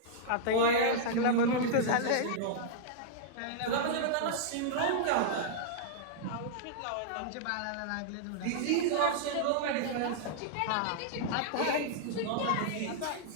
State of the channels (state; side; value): different; both; correlation -0.02